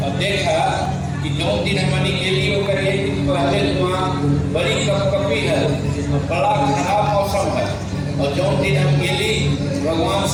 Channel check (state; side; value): identical; both; correlation 1.00